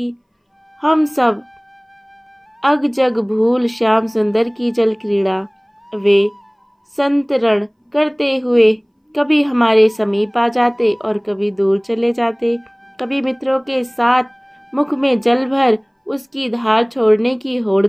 हम सब अग जग भूल श्याम सुंदर की जल क्रीड़ा। वे संतरण करते हुए कभी हमारे समीप आ जाते और कभी दूर चले जाते। कभी मित्रों के साथ मुख में जल भर उसकी धार छोड़ने की होड़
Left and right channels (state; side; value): identical; both; correlation 1.00